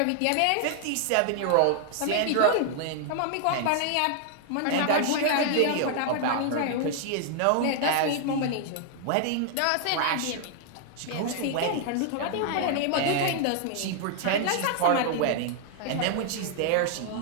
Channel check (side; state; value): both; different; correlation 0.00